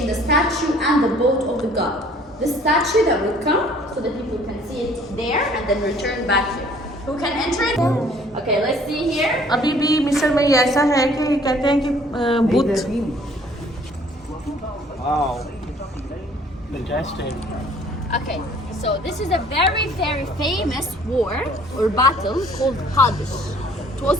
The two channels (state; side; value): normal; both; correlation 0.56